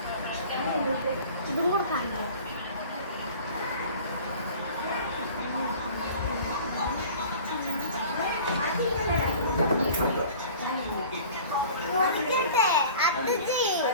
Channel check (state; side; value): inverted; both; correlation -0.44